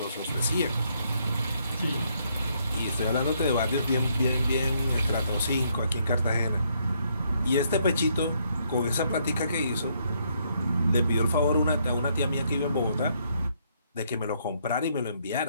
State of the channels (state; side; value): inverted; both; correlation -0.72